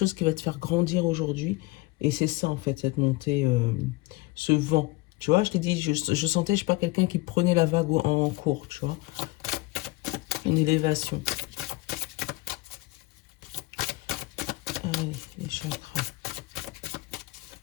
qui va te faire grandir aujourd'hui. Et c'est ça, en fait, cette montée, ce vent. Tu vois, je t'ai dit, je sentais, je sais pas, quelqu'un qui prenait la vague en cours, tu vois. Une élévation. Allez, les chakras.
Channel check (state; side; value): quieter; right; 21.4 dB